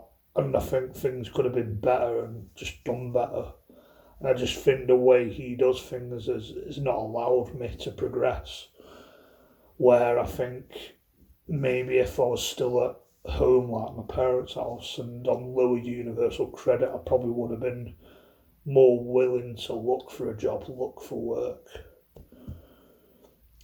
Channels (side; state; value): both; identical; correlation 1.00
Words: And I think things could have been better and just done better. And I just think the way he does things has not allowed me to progress. Where I think maybe if I was still at home, like my parents' house, and on lower universal credit, I probably would have been more willing to look for a job, look for work.